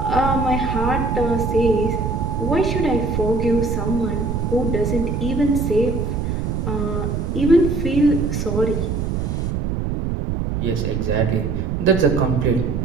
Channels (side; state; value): right; noise; rumble, 1 dB below the sound